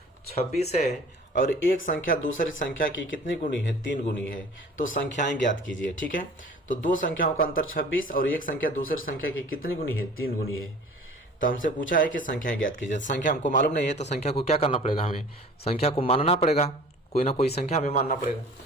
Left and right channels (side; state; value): both; normal; correlation 0.45